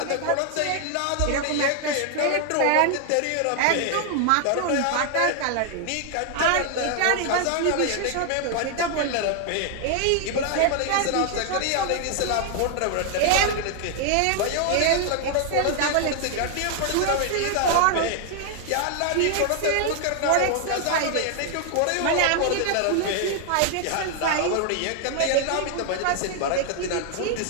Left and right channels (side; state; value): both; different; correlation 0.00